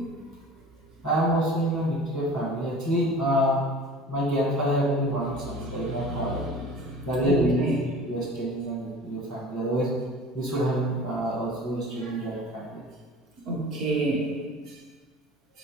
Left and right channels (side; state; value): both; normal; correlation 0.41